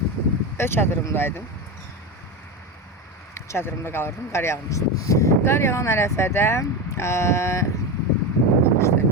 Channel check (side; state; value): both; normal; correlation 0.18